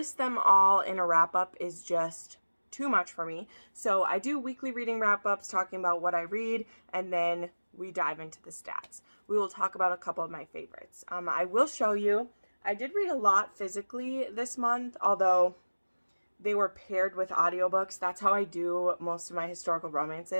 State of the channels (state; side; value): inverted; both; correlation -1.00